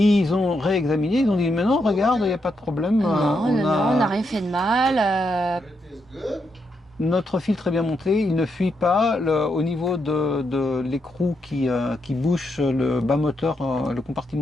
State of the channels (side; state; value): both; normal; correlation 0.81